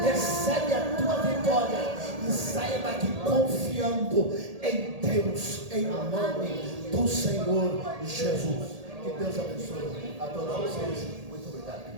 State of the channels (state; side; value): late; left; 1.8 ms